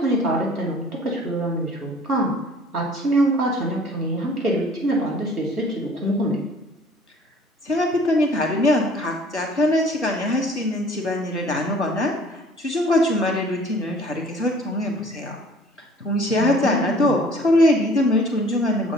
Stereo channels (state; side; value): normal; both; correlation 0.52